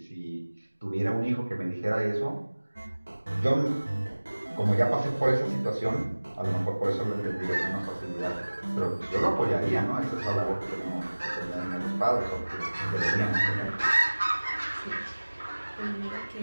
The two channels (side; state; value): both; inverted; correlation -1.00